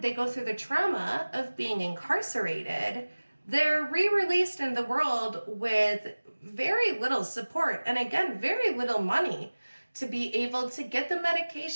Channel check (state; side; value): inverted; both; correlation -1.00